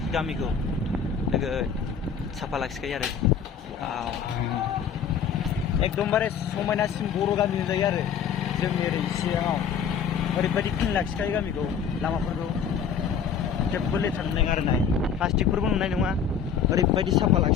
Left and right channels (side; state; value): right; quieter; 7.2 dB